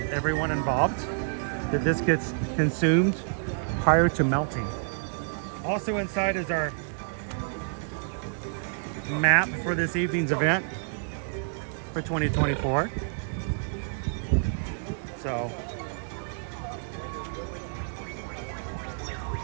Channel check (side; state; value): left; silent; digital silence